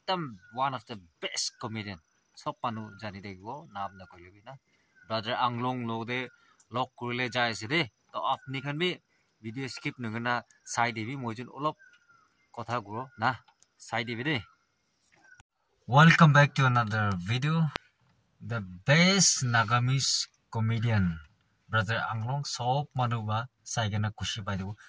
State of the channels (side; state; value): both; identical; correlation 1.00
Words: one of the best comedian সব মানুহ জানি থাকিব নাম নকৰিবি না ব্ৰাদাৰ আংলং লগতে লগ কৰিলে যাই আছে দে তো আপনি খান বি ভিডিও স্কিপ নগনা চাই দিবি মই যেন অলপ কথা কৰো না চাই দিবি দে Welcome back to another video. The best Nagamese comedian, brother Anglong, sob manuba saigena kushi pai debu.